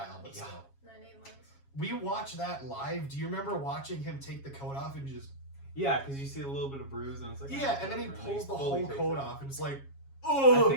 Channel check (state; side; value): late; right; 7.3 ms